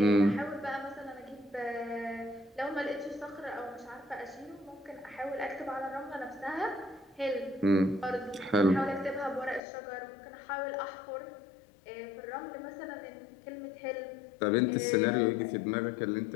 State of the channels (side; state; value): right; drops out; at 9.6 s